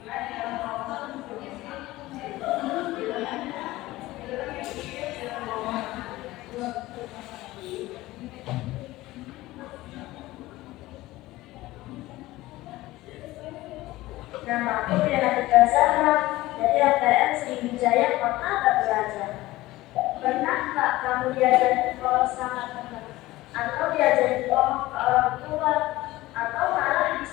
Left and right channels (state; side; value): quieter; right; 17.9 dB